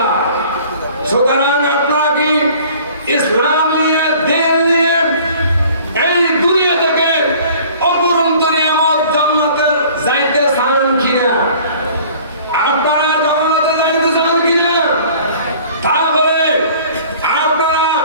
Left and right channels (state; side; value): inverted; both; correlation -0.50